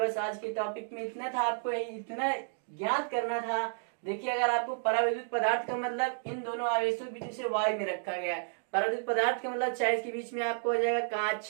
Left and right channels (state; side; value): silent; left; digital silence